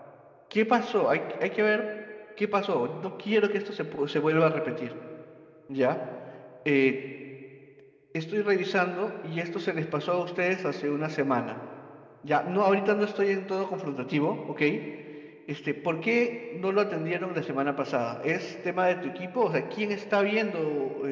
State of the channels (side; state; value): both; identical; correlation 1.00